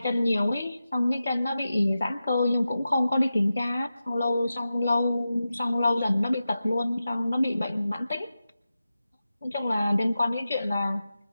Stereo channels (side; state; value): both; inverted; correlation -0.92